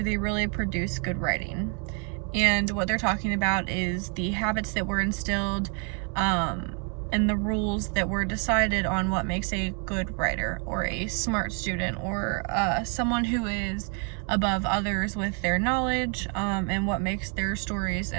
they really produce good writing? And what they're talking about is the habits that were instilled and the rules that were decided on what makes a good writer or a smart student or someone who is above others with their knowledge, and what makes their stories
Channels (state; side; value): quieter; left; 39.8 dB